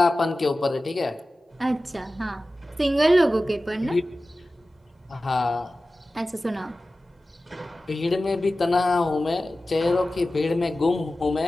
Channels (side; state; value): both; normal; correlation 0.95